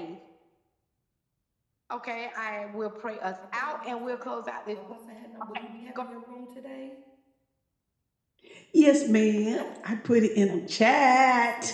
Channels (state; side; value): identical; both; correlation 1.00